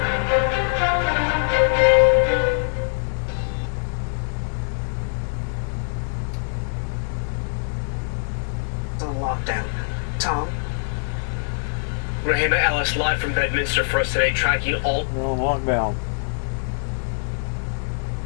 It's on lockdown. Tom? Rahima Ellis, live from Bedminster for us today, tracking all... We're on lockdown.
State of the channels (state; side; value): silent; right; digital silence